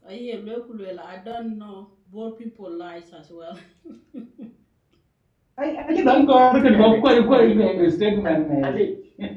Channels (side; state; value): both; identical; correlation 1.00